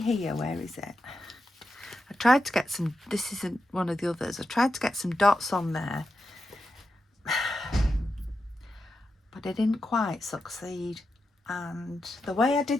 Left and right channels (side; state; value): both; normal; correlation 0.88